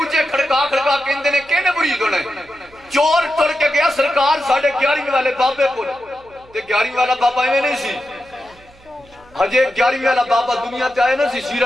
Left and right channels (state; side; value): noise; right; hum, 28 dB below the sound